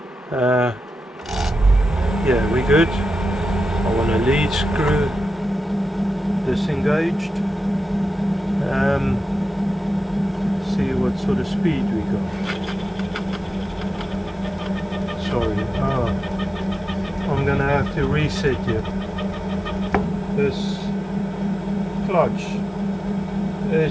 Yeah, we're good. I want a lead screw disengaged. See what sort of speed we got. Sorry, I'm gonna have to reset it. This clutch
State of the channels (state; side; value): normal; both; correlation 0.92